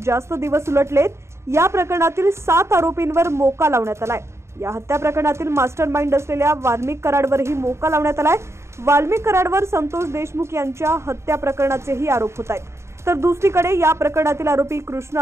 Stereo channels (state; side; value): late; left; 0.13 ms